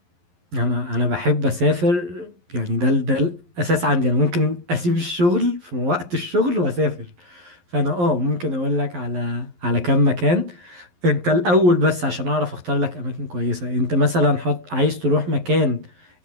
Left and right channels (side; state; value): left; late; 11 ms